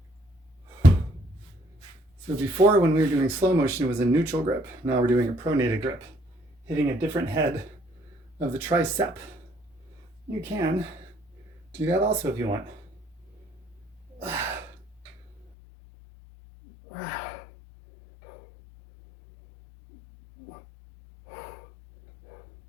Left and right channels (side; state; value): right; drops out; at 15.5 s